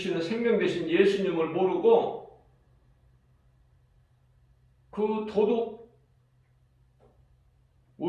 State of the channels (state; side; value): identical; both; correlation 1.00